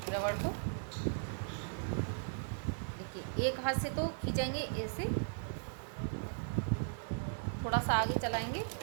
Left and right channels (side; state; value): left; silent; 53 dB below the other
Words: रबड़ को। देखिए, एक हाथ से तो खींचेंगे ऐसे, थोड़ा सा आगे चलाएंगे,